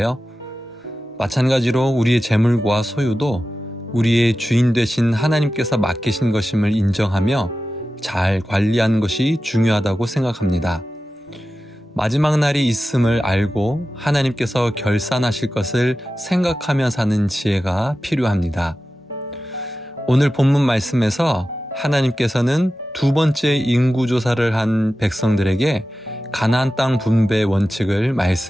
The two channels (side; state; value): both; normal; correlation 0.93